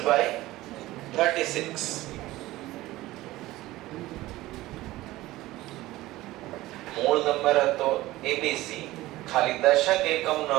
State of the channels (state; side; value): quieter; left; 17.4 dB